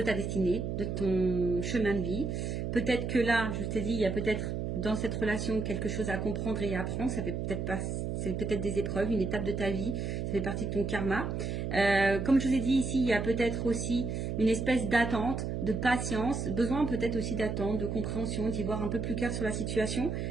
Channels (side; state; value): right; noise; hum, 2 dB below the sound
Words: ta destinée, de ton chemin de vie. Peut-être que là, je t'ai dit, il y a peut-être dans cette relation quelque chose à comprendre et à apprendre. Ça fait peut-être pas... C'est peut-être des épreuves, une étape de ta vie, ça fait partie de ton karma. Comme je vous ai dit ici, il y a peut-être aussi une espèce d'attente, de patience, besoin peut-être aussi d'attente, de compréhension, d'y voir un peu plus clair sur la situation.